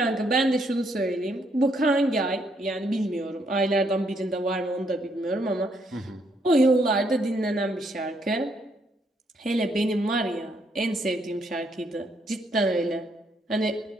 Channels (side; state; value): both; normal; correlation 0.73